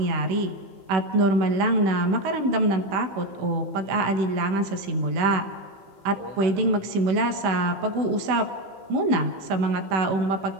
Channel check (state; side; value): late; left; 16 ms